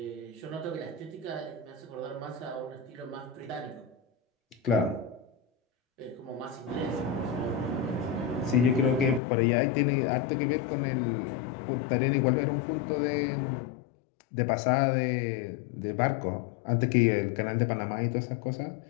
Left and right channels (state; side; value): drops out; right; at 9.2 s